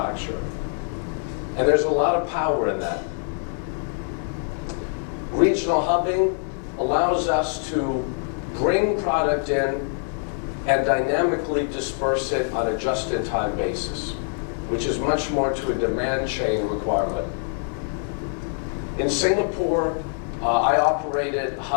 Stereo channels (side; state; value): right; silent; 62 dB below the other